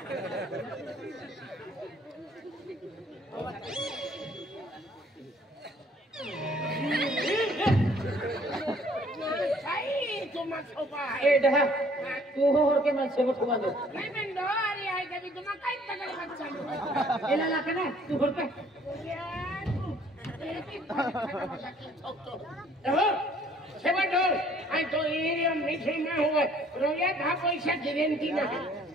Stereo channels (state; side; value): normal; both; correlation 0.59